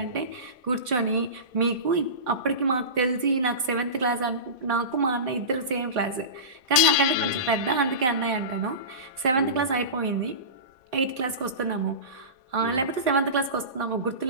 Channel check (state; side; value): late; left; 3.9 ms